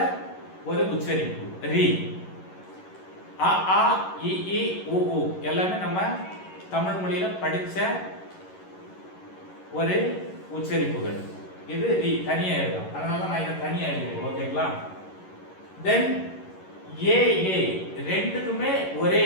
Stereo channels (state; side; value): late; right; 11 ms